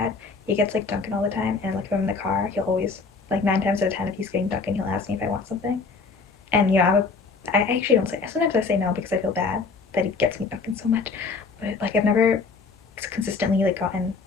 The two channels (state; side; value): quieter; right; 4.6 dB